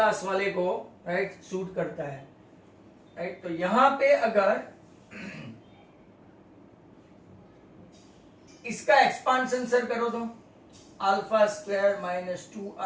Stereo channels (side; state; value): both; identical; correlation 1.00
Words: वाले को राइट सूट करता है, राइट। तो यहां पे अगर इसका एक्सपांशन सर करो तो alpha square minus 2